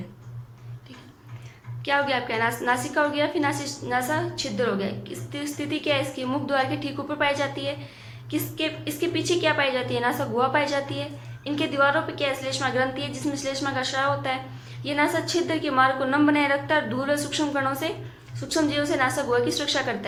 ठीक है। क्या हो गया आपका, नासिका हो गया, फिर नासा छिद्र हो गया। स्थिति क्या है इसकी, मुख द्वार के ठीक ऊपर पाई जाती है। इसके पीछे क्या पाई जाती है, नासा गुहा पाई जाती है। इनके दीवारों पे क्या है, श्लेष्मा ग्रंथि है, जिसमें श्लेष्मा का स्राव होता है। ये नासा छिद्र के मार्ग को नम बनाए रखता है, धूल और सूक्ष्म कणों से, सूक्ष्म जीवों से नासा गुहा की सुरक्षा करता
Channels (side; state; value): both; identical; correlation 1.00